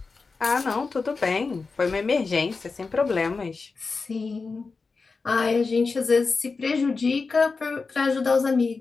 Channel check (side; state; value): right; quieter; 4.4 dB